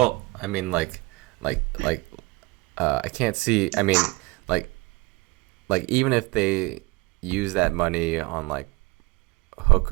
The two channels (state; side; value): quieter; left; 24.1 dB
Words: I mean, like, I can't see. I mean, like even if they use that money on like